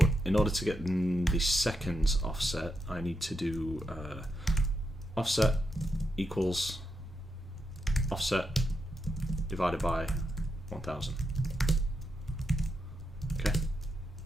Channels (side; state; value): both; normal; correlation 0.84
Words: in order to get the seconds offset, I need to do offset equals offset divided by 1000. Okay.